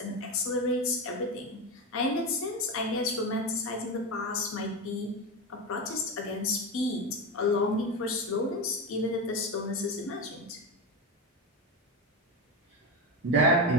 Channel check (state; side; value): normal; both; correlation 0.17